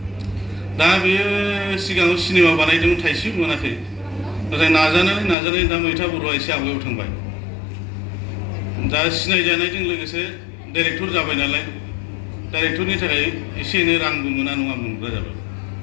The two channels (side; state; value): right; drops out; at 5.4 s